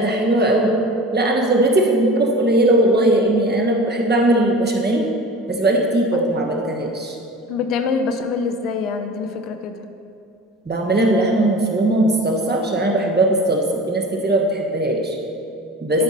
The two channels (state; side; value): normal; both; correlation 0.37